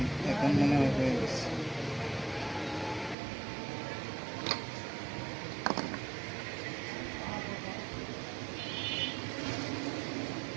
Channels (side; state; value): left; drops out; at 3.2 s